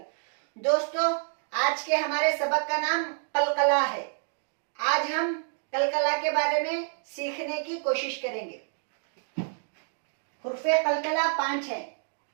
दोस्तों, आज के हमारे सबक का नाम कलकला है। आज हम कलकला के बारे में सीखने की कोशिश करेंगे। हुर्फे कलकला 5 है।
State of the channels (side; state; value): left; silent; digital silence